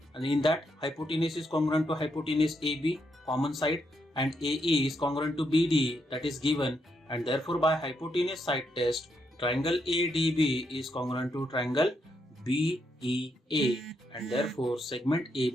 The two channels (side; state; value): both; normal; correlation 0.79